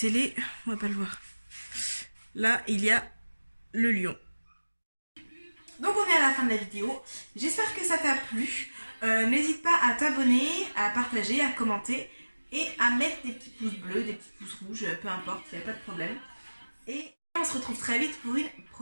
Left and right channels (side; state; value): both; inverted; correlation -1.00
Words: on va pas le voir. Là, il y a le lion. Donc on est à la fin de la vidéo. J'espère que ça t'a plu. N'hésite pas à t'abonner, à partager, à commenter et à mettre des petits pouces bleus, des petits pouces rouges, peu importe, il n'y a pas de problème. Et on se retrouve très vite pour une